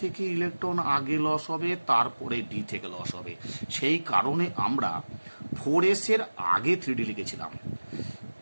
থেকে ইলেকট্রন আগে লস হবে, তারপরে d থেকে লস হবে। সেই কারণে আমরা 4s এর আগে 3d লিখেছিলাম।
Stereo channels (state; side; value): inverted; both; correlation -1.00